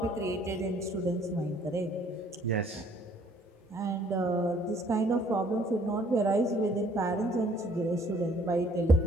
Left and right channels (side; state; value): both; normal; correlation 0.60